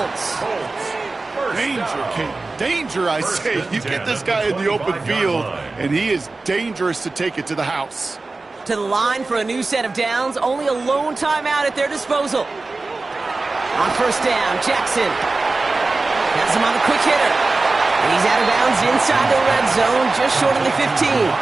Danger, Kate. Danger, I say. You get this guy in the open field, and he is dangerous to take it to the house. To the line for a new set of downs. Only a lone timeout at their disposal. On 1st down, Jackson has him on the quick hitter. And he's out of bounds inside the red zone, just short of the 15.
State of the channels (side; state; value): left; quieter; 3.5 dB